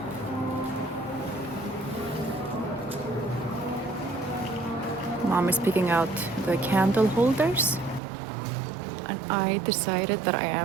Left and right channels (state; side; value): drops out; left; at 8.0 s